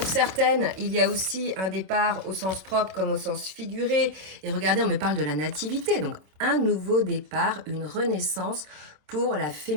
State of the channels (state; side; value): late; left; 27 ms